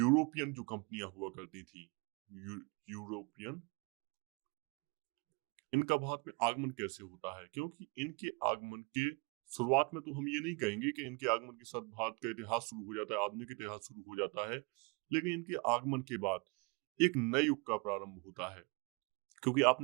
जो कंपनियां हुआ करती थी, यूरोपियन, इनका भारत में आगमन कैसे होता है। क्योंकि इनके आगमन के शुरुआत में तो हम ये नहीं कहेंगे कि इनके आगमन के साथ भारत का इतिहास शुरू हो जाता है, आधुनिक इतिहास शुरू हो जाता है, लेकिन इनके आगमन के बाद एक नए युग का प्रारंभ होता है। क्योंकि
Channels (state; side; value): quieter; left; 31.2 dB